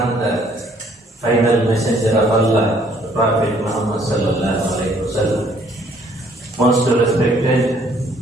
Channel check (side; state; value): both; normal; correlation 0.63